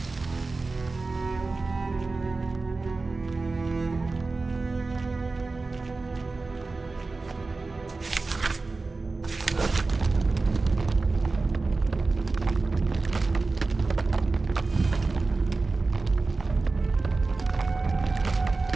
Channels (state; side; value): quieter; left; 3.7 dB